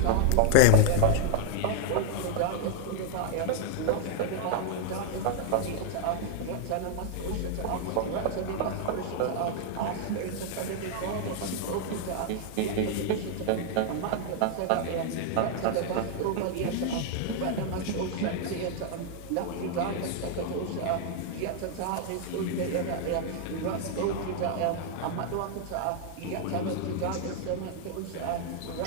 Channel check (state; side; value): different; both; correlation 0.00